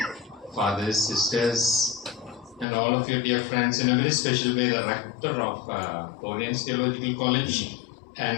fathers, sisters, and all of your dear friends, in a very special way, the rector of Oriens Theological College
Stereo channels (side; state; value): right; drops out; at 2.7 s